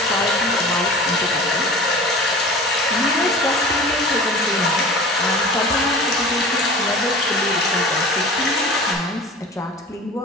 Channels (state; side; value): normal; both; correlation 0.38